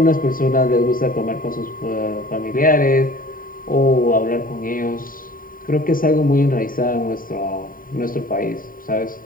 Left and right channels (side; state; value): right; late; 0.41 ms